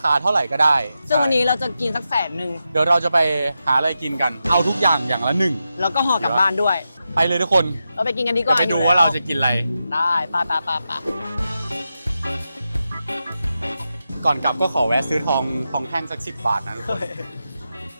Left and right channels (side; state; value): both; inverted; correlation -0.89